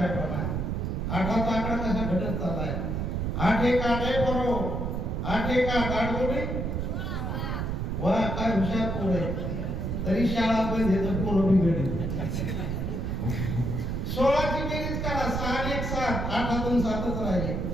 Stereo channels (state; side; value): noise; right; rumble, 1 dB below the sound